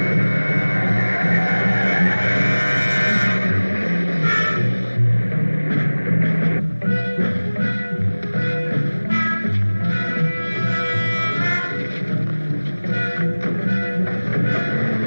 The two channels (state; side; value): inverted; both; correlation -1.00